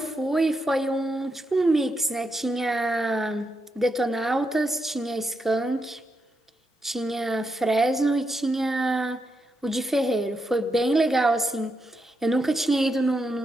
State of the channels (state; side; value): normal; both; correlation 0.84